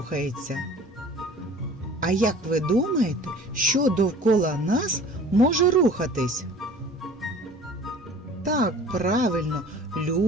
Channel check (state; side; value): normal; both; correlation 0.45